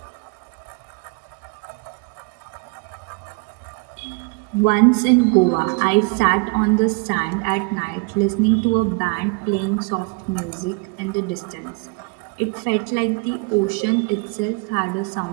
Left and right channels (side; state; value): left; quieter; 31.3 dB